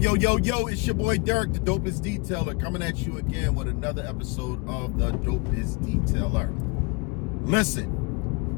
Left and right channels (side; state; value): right; quieter; 28.5 dB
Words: your boy Derek, the Dopest Detailer, coming at you again with another episode of the Dopest Detailer.